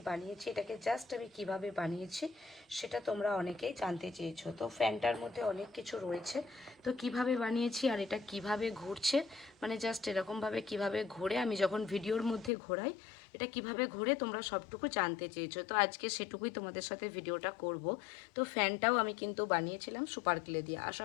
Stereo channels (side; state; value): right; drops out; at 12.5 s